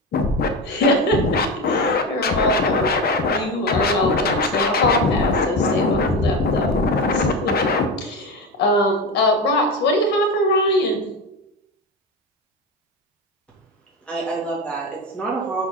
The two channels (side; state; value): both; normal; correlation 0.20